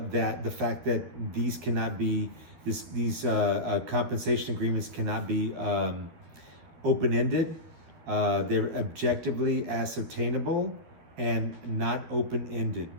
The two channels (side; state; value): left; late; 12 ms